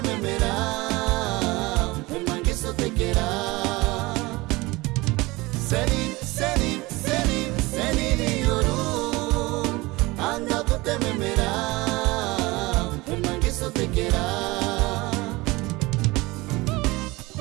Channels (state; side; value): quieter; left; 22.0 dB